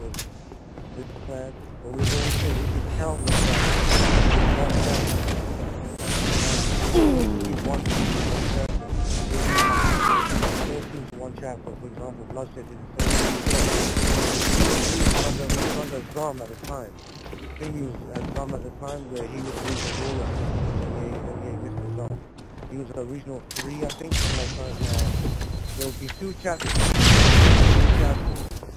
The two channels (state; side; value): identical; both; correlation 1.00